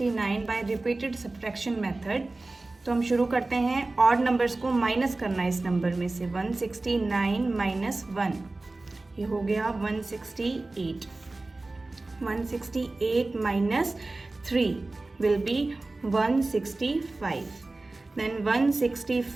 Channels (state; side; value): quieter; left; 3.1 dB